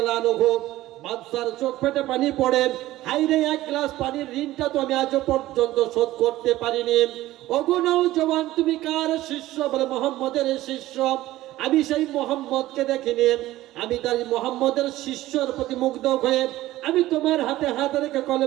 আনহু। বাদশার চোখ ফেটে পানি পড়ে, হায়রে এক গ্লাস পানির ঋণটা তো আমি আজ পর্যন্ত শোধ করতে পারিনি। ওগো নওজওয়ান, তুমি কার শিষ্য? বলে, মুহাম্মদের শিষ্য। আমি সেই মুহাম্মদকে দেখিনি, আমি তার মুহাম্মদের শিষ্যর প্রতি মুগ্ধ হয়ে আমি তোমার হাতে হাত রেখে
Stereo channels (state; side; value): quieter; left; 16.0 dB